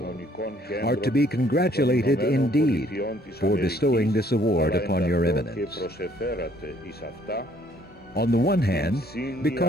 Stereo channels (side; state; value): both; normal; correlation 0.63